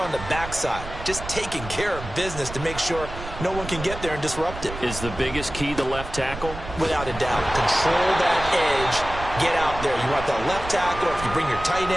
the back side? Just taking care of business to make sure no one can get there and disrupt it. Is the biggest key the left tackle? Without a doubt. Control that edge. Get out there. You want that left tackle, if you bring your tight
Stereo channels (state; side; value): noise; right; rumble, 10 dB below the sound